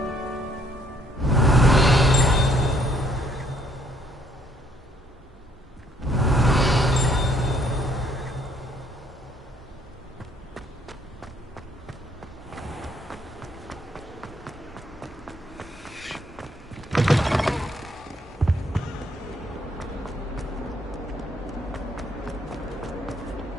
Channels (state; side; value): normal; both; correlation 0.67